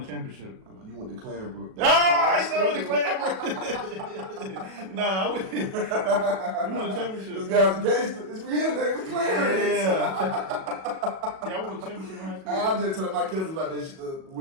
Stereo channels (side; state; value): left; late; 37 ms